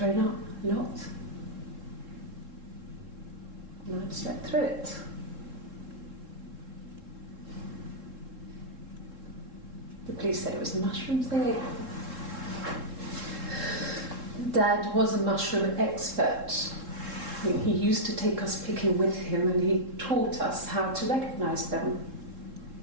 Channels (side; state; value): left; late; 3.7 ms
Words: up a lot. And I'd slept through it. The police said it was the mushrooms they ate. Dad was a mushroom expert. He used to take us picking with him and he taught us how to recognise them.